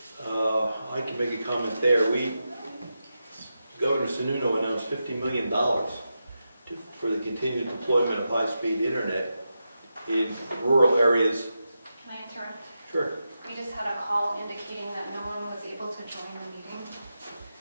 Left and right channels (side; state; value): both; inverted; correlation -0.88